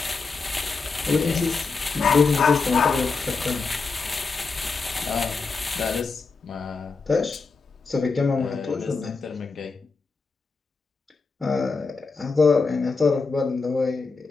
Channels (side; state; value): right; quieter; 4.4 dB